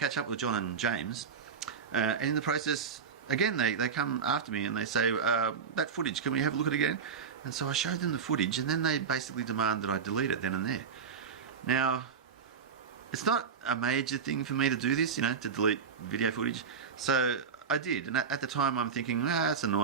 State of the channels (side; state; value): left; quieter; 6.3 dB